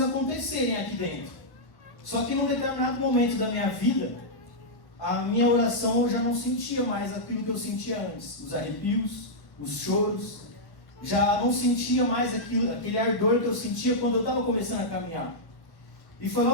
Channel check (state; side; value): late; right; 1.1 ms